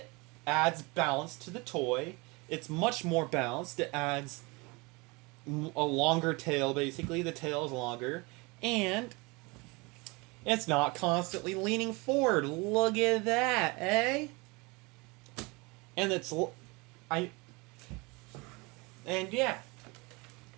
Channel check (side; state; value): left; quieter; 26.5 dB